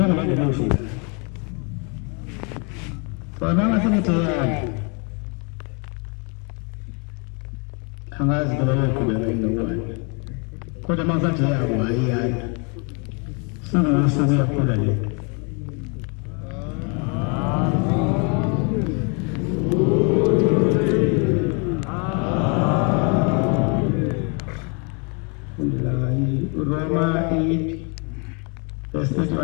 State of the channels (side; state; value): right; quieter; 34.9 dB